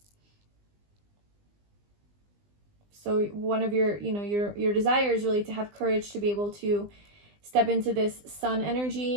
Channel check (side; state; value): left; late; 20 ms